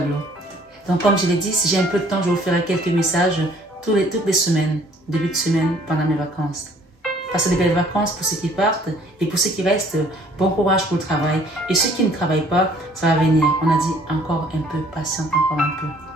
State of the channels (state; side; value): normal; both; correlation 0.58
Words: Donc comme je l'ai dit, si j'ai un peu de temps, je vous ferai quelques messages toutes les semaines, début de semaine, pendant mes vacances. Passez de belles vacances pour ceux qui partent et pour ceux qui restent, bon courage pour le travail. Et ceux qui ne travaillent pas, ça va venir. On a dit encore un peu, patiente encore un peu.